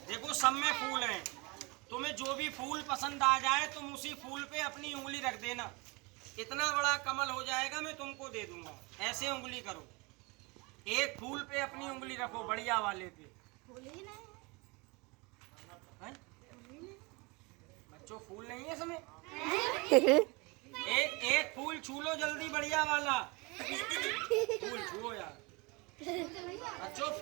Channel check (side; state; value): left; quieter; 27.1 dB